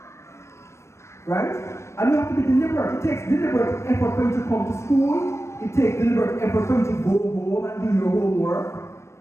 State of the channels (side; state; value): right; late; 0.13 ms